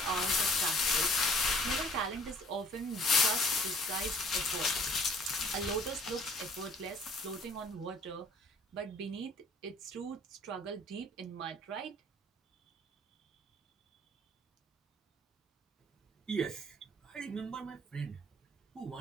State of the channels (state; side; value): normal; both; correlation 0.54